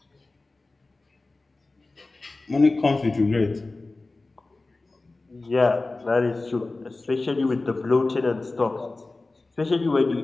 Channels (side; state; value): right; quieter; 3.3 dB